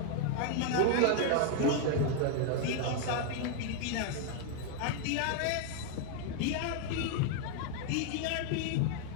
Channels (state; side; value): different; both; correlation 0.00